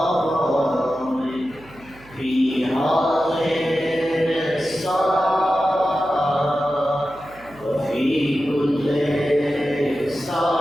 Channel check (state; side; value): noise; right; hum, 23 dB below the sound